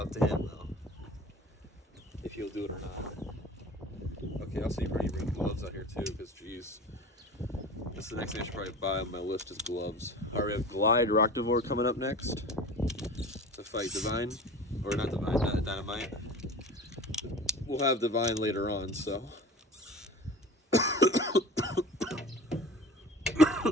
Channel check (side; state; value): both; normal; correlation 0.38